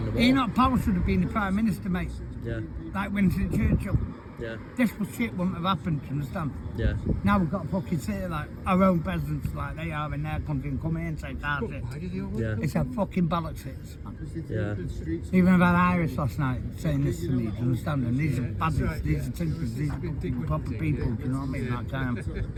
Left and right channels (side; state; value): both; identical; correlation 1.00